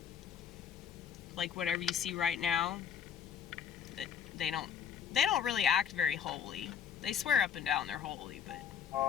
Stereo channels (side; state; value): right; quieter; 8.1 dB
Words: Like whatever you see right now, they don't really act very holy. They swear up and down they're holy, but